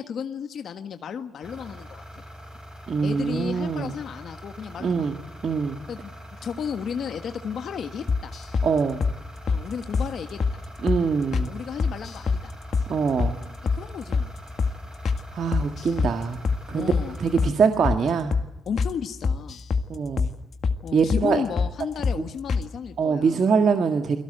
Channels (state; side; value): normal; both; correlation 0.79